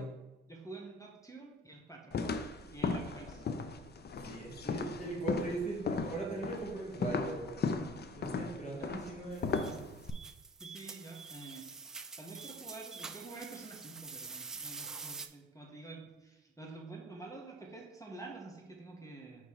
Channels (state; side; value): normal; both; correlation 0.48